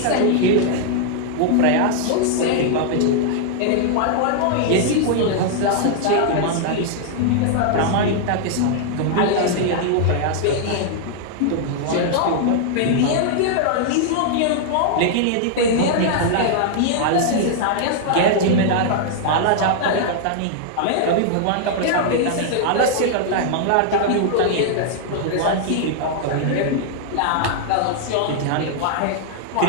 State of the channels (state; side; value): different; both; correlation -0.01